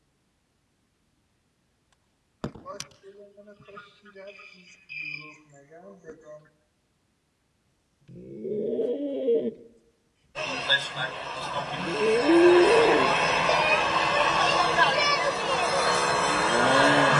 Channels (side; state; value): both; identical; correlation 1.00